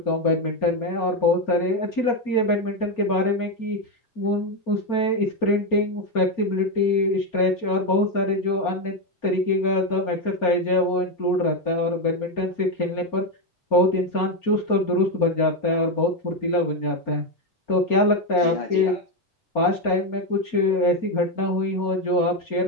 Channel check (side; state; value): right; late; 4.3 ms